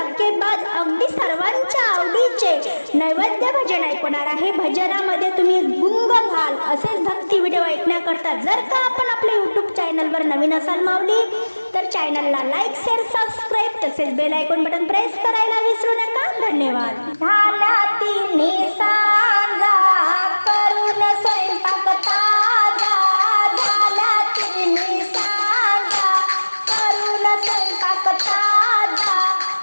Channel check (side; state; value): both; inverted; correlation -1.00